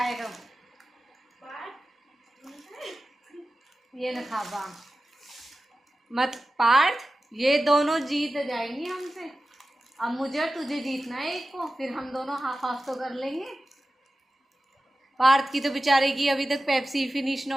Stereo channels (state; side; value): normal; both; correlation 0.94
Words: ये न खाबा मत पार्थ, ये दोनों जीत जाएंगे हमसे। अब मुझे और तुझे जीतना है एक को, फिर हम दोनों हाफ हाफ तो कर लेंगे। पार्थ की तो बेचारे की अभी तक पेप्सी फिनिश ना